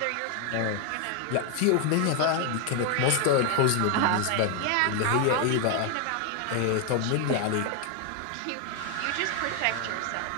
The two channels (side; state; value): both; different; correlation 0.01